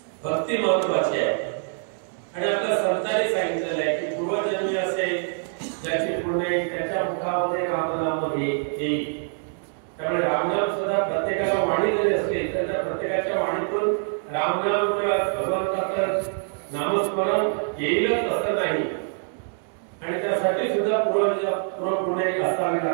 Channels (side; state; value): left; silent; 62 dB below the other